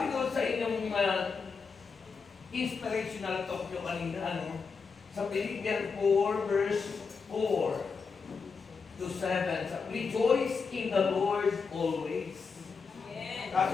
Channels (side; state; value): right; quieter; 5.2 dB